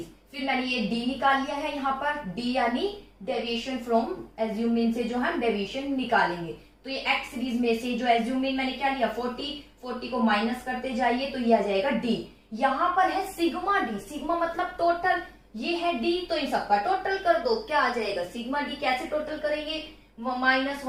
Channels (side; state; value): both; identical; correlation 1.00